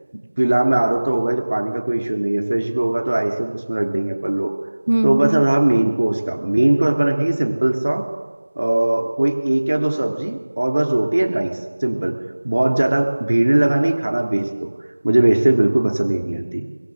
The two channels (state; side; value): inverted; both; correlation -1.00